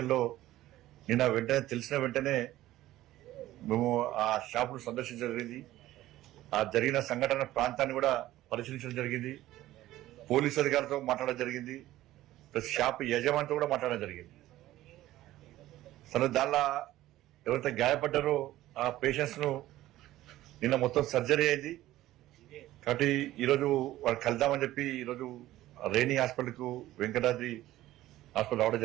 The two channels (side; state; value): left; quieter; 15.2 dB